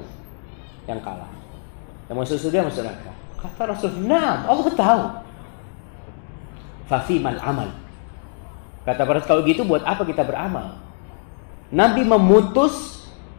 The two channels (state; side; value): silent; right; digital silence